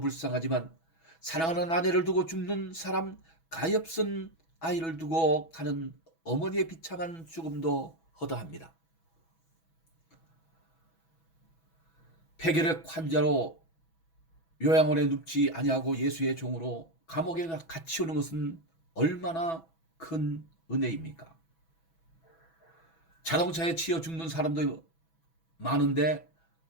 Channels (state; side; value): late; right; 6.1 ms